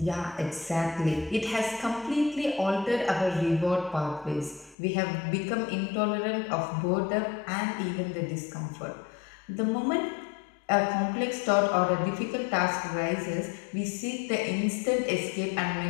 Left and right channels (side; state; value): right; drops out; at 4.8 s